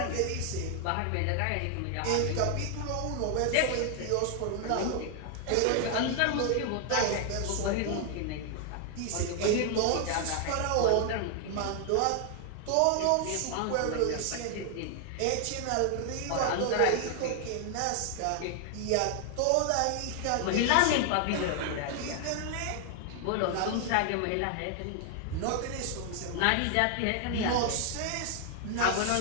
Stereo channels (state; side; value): different; both; correlation 0.00